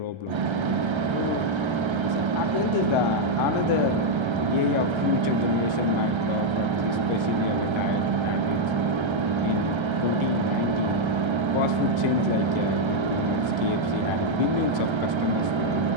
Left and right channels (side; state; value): left; late; 1.3 ms